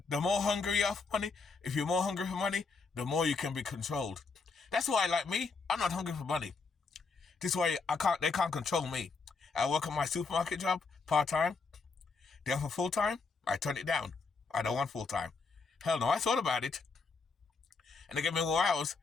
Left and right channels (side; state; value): right; quieter; 4.4 dB